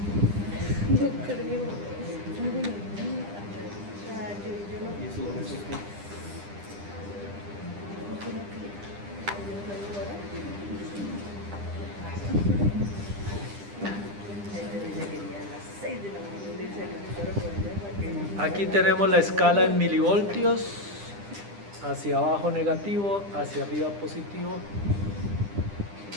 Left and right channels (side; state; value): left; late; 10 ms